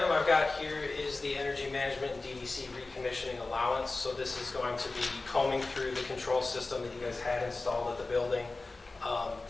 I've got here is the Energy Management and DDC Recommissioning Allowance. So this is going to be combing through the control system that you guys had installed at the building,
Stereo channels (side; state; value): right; quieter; 3.4 dB